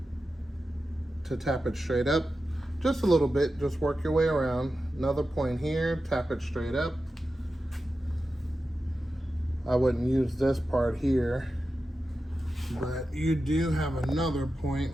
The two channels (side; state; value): both; normal; correlation 0.92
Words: to tap it straight up, just a little bit, just work your way around. Another point here, tap it straight up. I wouldn't use this part here, but you do have another